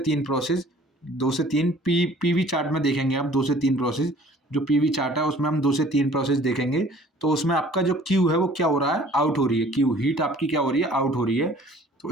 प्रोसेस, 2 से 3 पीवी चार्ट में देखेंगे आप, 2 से 3 प्रोसेस, जो पीवी चार्ट है उसमें हम 2 से 3 प्रोसेस देखेंगे। तो उसमें आपका जो क्यू है वो क्या हो रहा है, आउट हो रही है, क्यू हीट आपकी क्या हो रही है, आउट हो रही है। तो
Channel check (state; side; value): normal; both; correlation 0.52